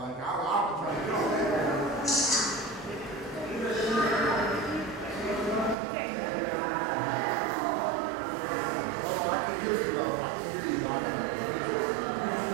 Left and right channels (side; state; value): left; drops out; at 5.8 s